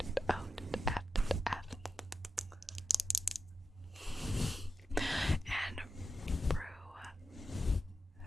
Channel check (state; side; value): normal; both; correlation 0.90